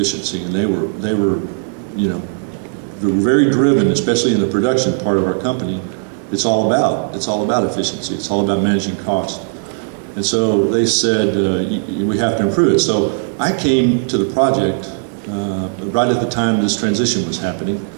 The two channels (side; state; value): left; silent; digital silence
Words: and they were very driven, especially in the production part of our company. It's all about efficiency. It's all about managing cost. And so they said, we have to improve it. So I came to the project right at the time this transition was happening.